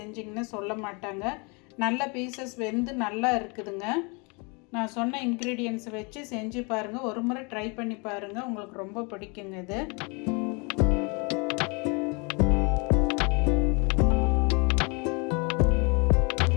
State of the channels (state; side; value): quieter; right; 31.3 dB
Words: சொல்ல மாட்டாங்க. நல்ல பீசஸ் வெந்து நல்லா இருக்குதுங்க. நான் சொன்ன இன்க்ரீடியன்ட்ஸ் வச்சு செஞ்சு பாருங்கள், ஒரு முறை ட்ரை பண்ணி பாருங்கள், உங்களுக்கு ரொம்ப பிடிக்குங்க இது.